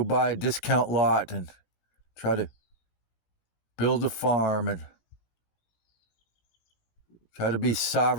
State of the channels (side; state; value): right; late; 17 ms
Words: buy a discount lot and try to build a farm and try to be